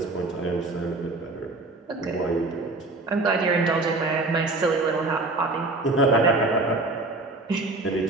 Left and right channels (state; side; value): quieter; left; 3.1 dB